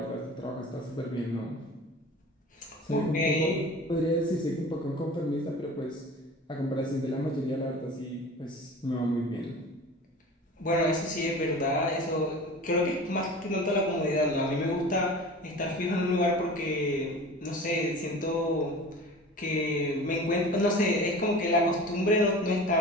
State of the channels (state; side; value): normal; both; correlation 0.38